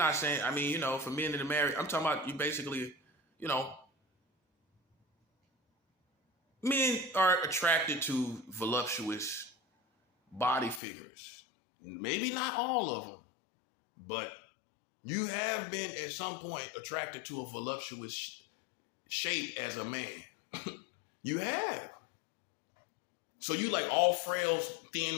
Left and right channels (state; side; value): drops out; right; at 10.8 s